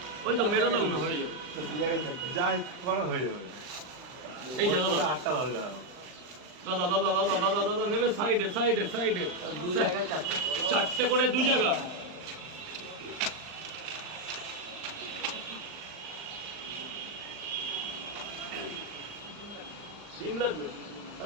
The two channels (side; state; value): left; late; 39 ms